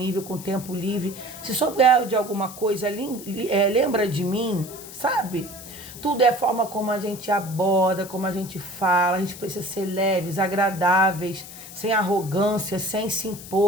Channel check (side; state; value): left; noise; hiss, 14 dB below the sound